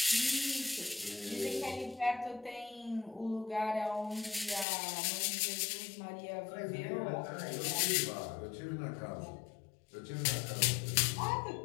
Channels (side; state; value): right; drops out; at 4.7 s